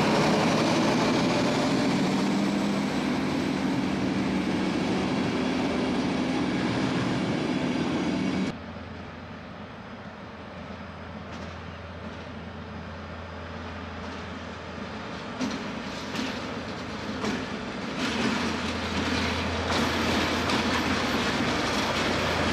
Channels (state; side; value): identical; both; correlation 1.00